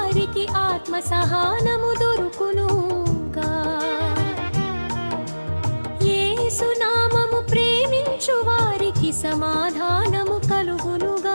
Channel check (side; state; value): both; inverted; correlation -1.00